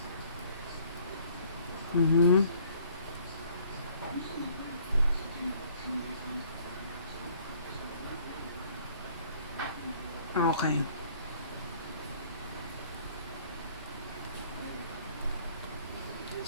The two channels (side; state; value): both; inverted; correlation -0.57